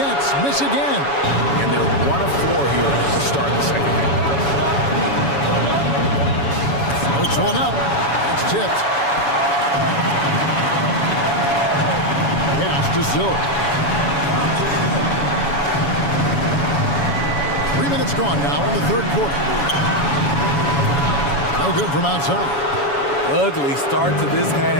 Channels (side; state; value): right; late; 7.1 ms